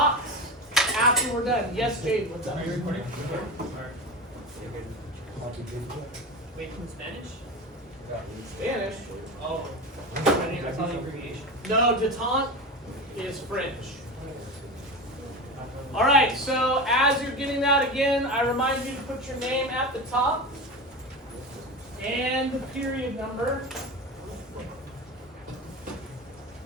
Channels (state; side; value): normal; both; correlation 0.25